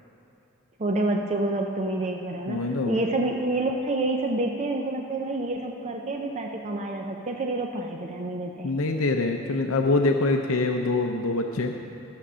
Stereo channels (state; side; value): normal; both; correlation 0.29